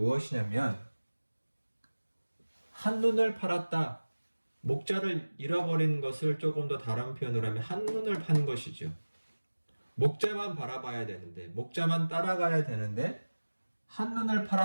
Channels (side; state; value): both; inverted; correlation -1.00